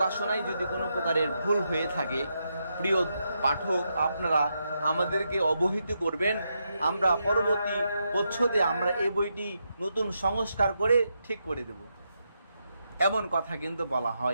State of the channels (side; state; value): both; inverted; correlation -0.83